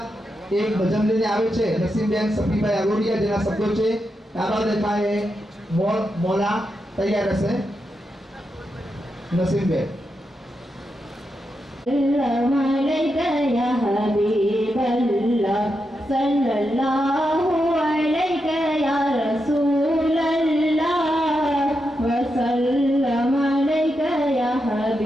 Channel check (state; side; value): normal; both; correlation 0.86